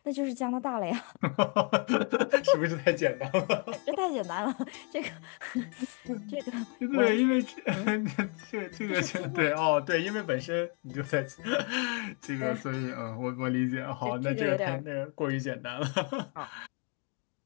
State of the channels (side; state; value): right; quieter; 35.6 dB